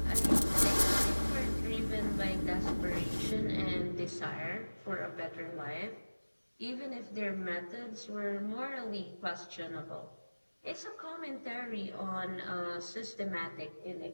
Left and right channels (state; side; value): inverted; both; correlation -1.00